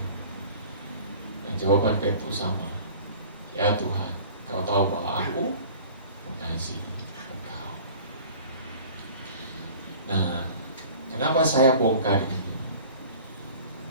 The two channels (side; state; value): both; inverted; correlation -0.45